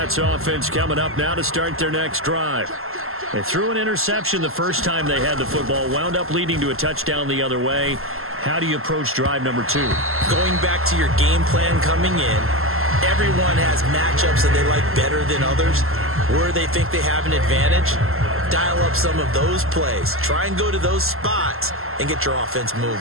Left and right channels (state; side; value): late; left; 0.62 ms